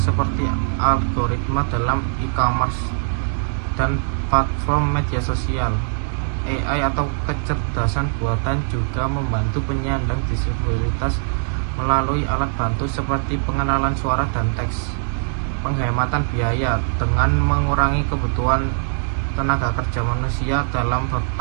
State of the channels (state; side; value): silent; left; digital silence